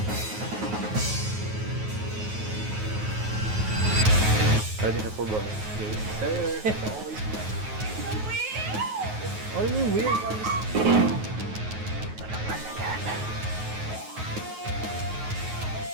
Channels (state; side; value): late; left; 9.4 ms